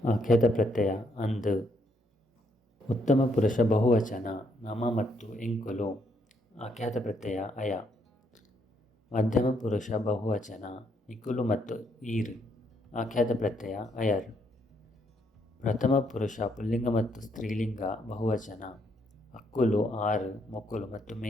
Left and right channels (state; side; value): normal; both; correlation 0.73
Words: ಆಖ್ಯಾತ ಪ್ರತ್ಯಯ ಅಂದು. ಉತ್ತಮ ಪುರುಷ ಬಹುವಚನ ನಮ ಮತ್ತು ಎಂಕುಲು ಆಖ್ಯಾತ ಪ್ರತ್ಯಯ ಅಯ. ಮಧ್ಯಮ ಪುರುಷ ಬಹುವಚನ ನಿಕುಲು ಮತ್ತು ಈರ್ ಆಖ್ಯಾತ ಪ್ರತ್ಯಯ ಅಯರ್. ಪ್ರಥಮ ಪುರುಷ ಪುಲ್ಲಿಂಗ ಮತ್ತು ಸ್ತ್ರೀಲಿಂಗ ಬಹುವಚನ ಅಕ್ಕುಲು ಆರು ಮೊಕ್ಕುಲು ಮತ್ತು